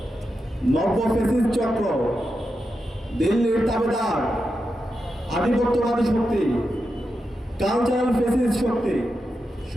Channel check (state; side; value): normal; both; correlation 0.88